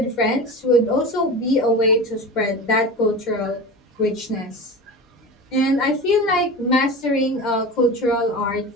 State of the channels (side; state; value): both; normal; correlation 0.30